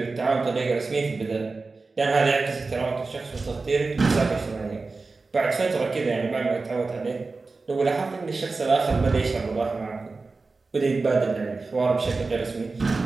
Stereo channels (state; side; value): quieter; left; 3.9 dB